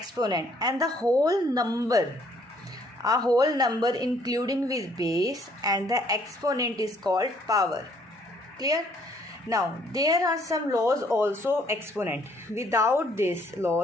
and the whole number, a whole number including with base and the exponent is called power. Clear? Now, there are some laws also exponent. Without these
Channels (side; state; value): both; normal; correlation 0.64